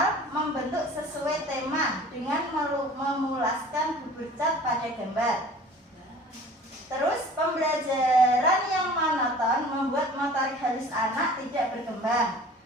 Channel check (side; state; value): both; normal; correlation 0.45